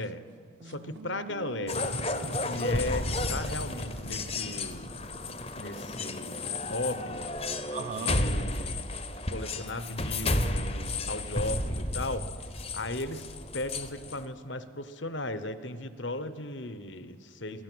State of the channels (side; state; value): both; normal; correlation 0.33